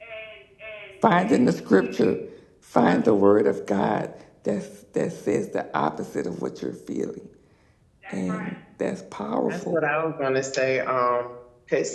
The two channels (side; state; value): both; identical; correlation 1.00